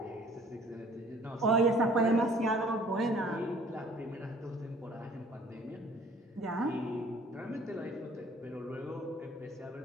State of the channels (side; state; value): both; normal; correlation 0.53